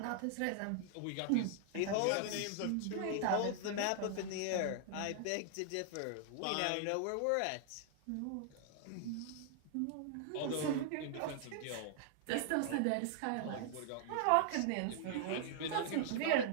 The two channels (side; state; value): both; different; correlation -0.01